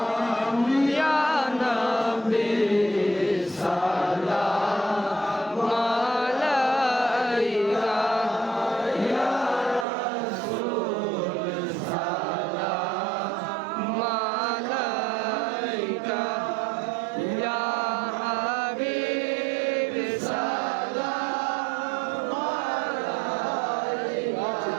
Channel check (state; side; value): drops out; left; at 9.9 s